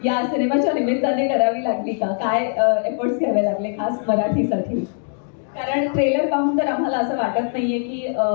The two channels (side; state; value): right; silent; 56 dB below the other